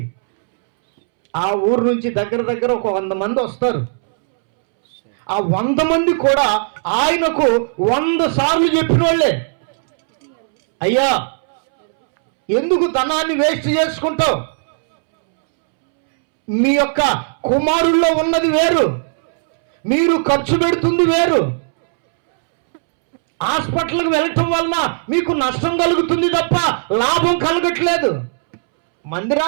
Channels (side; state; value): left; silent; 68 dB below the other